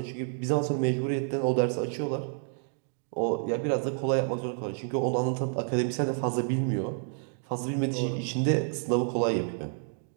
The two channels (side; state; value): left; silent; 58 dB below the other